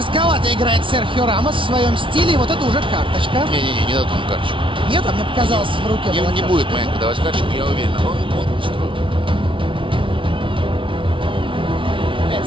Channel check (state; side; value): late; left; 0.25 ms